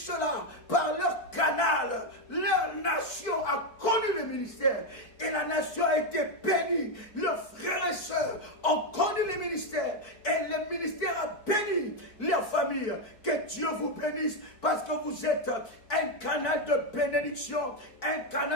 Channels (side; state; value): right; late; 4.6 ms